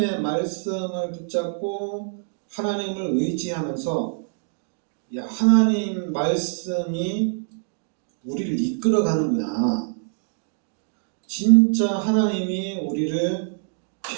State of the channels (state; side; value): silent; left; digital silence